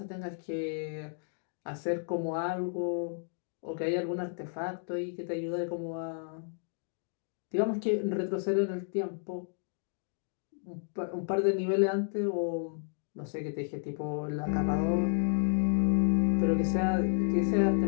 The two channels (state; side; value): silent; right; digital silence